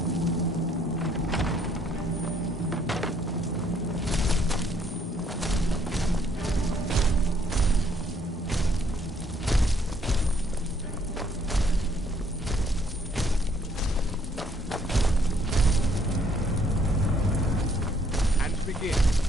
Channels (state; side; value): normal; both; correlation 0.67